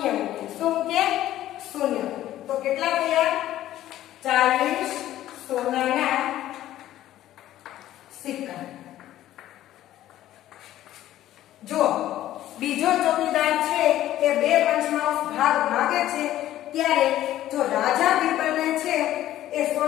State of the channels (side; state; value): right; quieter; 13.4 dB